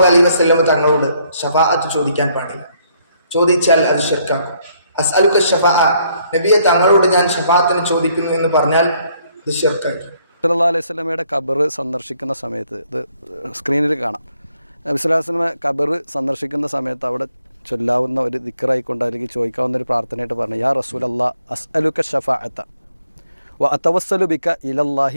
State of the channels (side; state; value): both; inverted; correlation -0.70